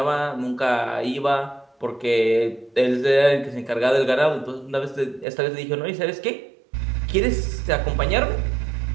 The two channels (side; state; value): left; drops out; at 5.2 s